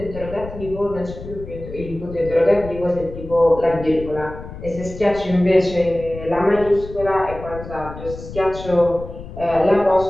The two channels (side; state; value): left; noise; rumble, 12 dB below the sound